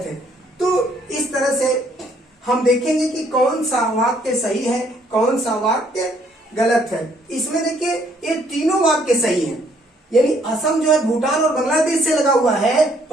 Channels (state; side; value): normal; both; correlation 0.66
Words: है। तो इस तरह से हम देखेंगे कि कौन सा वाक्य सही है, कौन सा वाक्य गलत है। इसमें देखिए ये तीनों वाक्य सही हैं। यानी असम जो है भूटान और बांग्लादेश से लगा हुआ है,